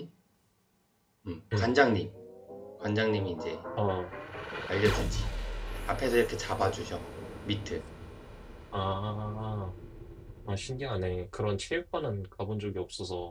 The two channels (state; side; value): identical; both; correlation 1.00